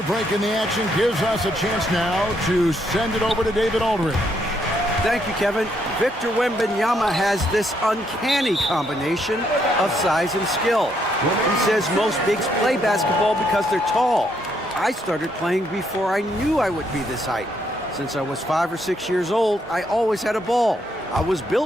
break in the action, gives us a chance now to send it over to David Aldridge. Thank you, Kevin. Victor Wembanyama has this uncanny combination of size and skill. He says most bigs play basketball because they're tall. I started playing before I knew I would be this height. Since I was 5 or 6 years old, I always had a ball. I was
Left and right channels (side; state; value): both; normal; correlation 0.74